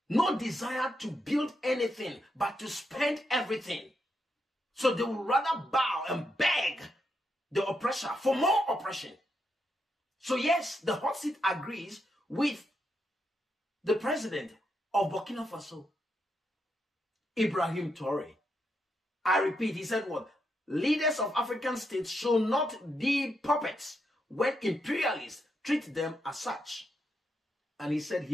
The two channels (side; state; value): both; normal; correlation 0.81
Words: no desire to build anything but to spend everything. So they would rather bow and beg the oppressor for more oppression. So yes, the hot seat agrees with the president of Burkina Faso, Ibrahim Traoré. I repeat, he said what? Leaders of African states should not be puppets when imperialists treat them as such. And he said